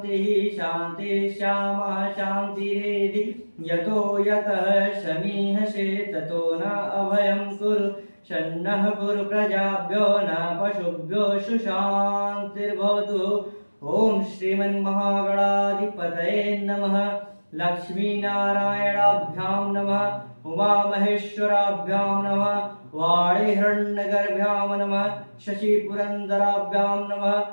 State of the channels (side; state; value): both; inverted; correlation -1.00